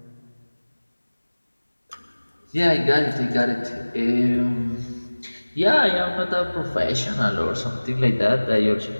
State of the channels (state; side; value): inverted; both; correlation -1.00